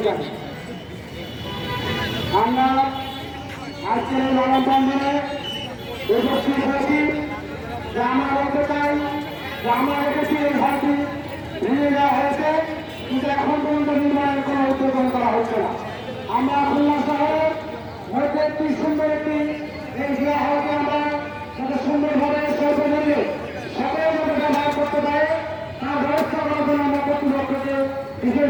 জানি। আমরা আজকের এই মানববন্ধনে উপস্থিত হয়েছি যে আমরা বলতে চাই যে আমরা দেখেছি এই ঘরটি ভেঙে দেওয়া হয়েছে, কিন্তু এখন পর্যন্ত নির্মাণের কোনো উদ্যোগ করা হচ্ছে না। আমরা খুলনা শহরের মধ্যে একটি সুন্দর একটি এই জিয়া হলকে আমরা যাতে সুন্দরভাবে স্বল্প মূল্যে সকলে যাতে ব্যবহার করতে পারে তার ব্যবস্থা করার জন্য আমরা কর্তৃপক্ষকে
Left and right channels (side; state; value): both; identical; correlation 1.00